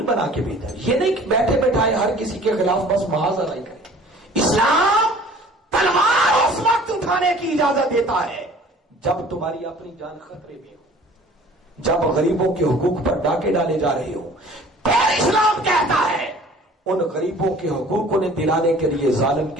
بنا کے بھیجا۔ یہ نہیں کہ بیٹھے بیٹھائے ہر کسی کے خلاف بس محاذ نہیں کرے۔ اسلام تلوار اس وقت اٹھانے کی اجازت دیتا ہے جب تمہاری اپنی جان خطرے میں ہو، جب غریبوں کے حقوق پر ڈاکے ڈالے جا رہے ہو۔ پھر اسلام کہتا ہے ان غریبوں کے حقوق انہیں دلانے کے لیے ظالم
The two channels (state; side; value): normal; both; correlation 0.49